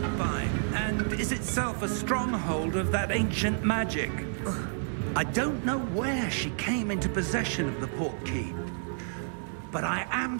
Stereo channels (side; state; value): left; silent; digital silence